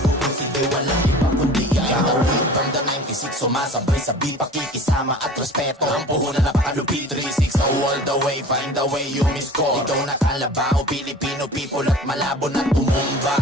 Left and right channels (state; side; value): normal; both; correlation 0.42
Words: walang iba kundi ikaw. From the 96, sumasabay sa beat, pakikisama at respeto. Ang puhunan napakalupit, 360 all the way, find the way you miss call. Ikaw na kalabaw, Filipino people at malabo na tumumba.